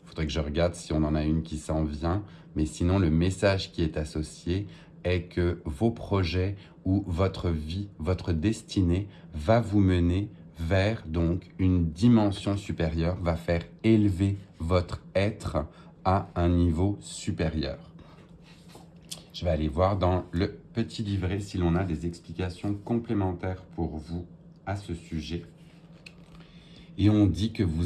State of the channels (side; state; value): both; identical; correlation 1.00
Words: Il faudrait que je regarde si on en a une qui s'en vient. Mais sinon, le message qui est associé est que vos projets ou votre vie, votre destinée va vous mener vers donc une dimension supérieure, va faire élever votre être à un niveau supérieur. Je vais aller voir dans le petit livret si l'on a des explications complémentaires pour vous à ce sujet. Et on dit que